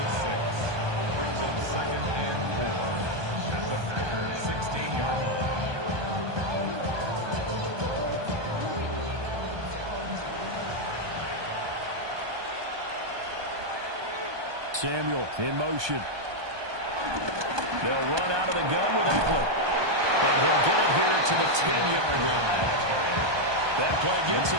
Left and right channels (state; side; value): late; left; 1.2 ms